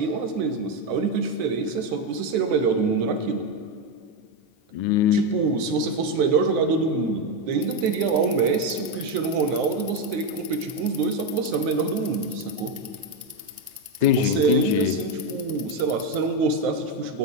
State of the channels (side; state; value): left; late; 9.5 ms